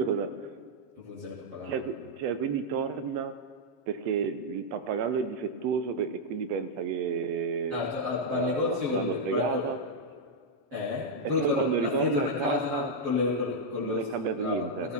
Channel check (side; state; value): left; late; 7.4 ms